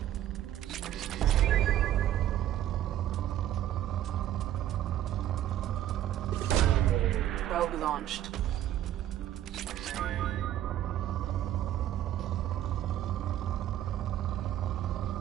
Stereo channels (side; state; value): left; quieter; 12.2 dB